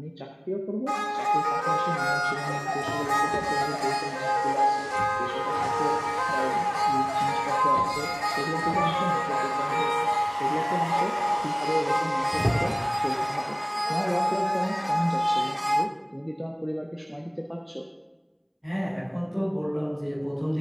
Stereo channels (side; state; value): both; identical; correlation 1.00